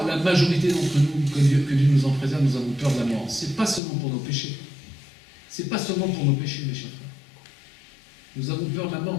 la majorité d'entre nous, que Dieu nous en préserve, nous avons peur de la mort? Ce n'est pas seulement pour nos péchés. Ce n'est pas seulement pour nos péchés, mes chers frères. Nous avons peur de la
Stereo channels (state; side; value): drops out; right; at 3.8 s